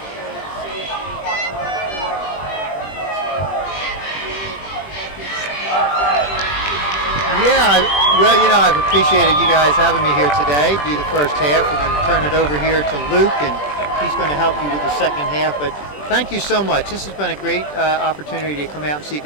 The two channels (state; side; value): late; right; 20 ms